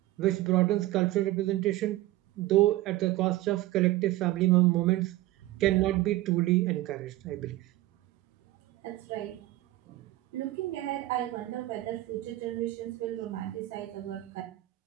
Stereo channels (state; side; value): quieter; left; 16.9 dB